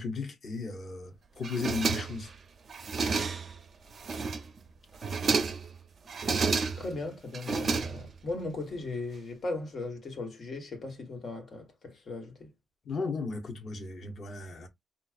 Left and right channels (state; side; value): normal; both; correlation 0.79